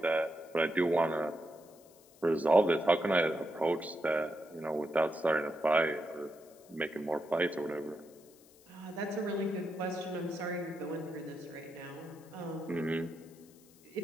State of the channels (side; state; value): left; noise; hiss, 26 dB below the sound